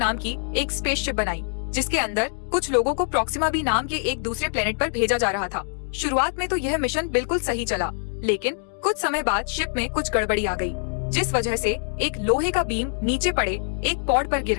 की एक स्पेसशिप बनाई, जिसके अंदर कुछ लोगों को प्रॉक्सिमा बी नाम के एक दूसरे प्लेनेट पर भेजा जा रहा था। शुरुआत में तो यह मिशन बिल्कुल सही चला, लेकिन कुछ समय बाद शिप में कुछ गड़बड़ी आ गई, जिस वजह से एक लोहे का बीम नीचे पड़े एक पॉड पर गिर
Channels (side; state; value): right; silent; digital silence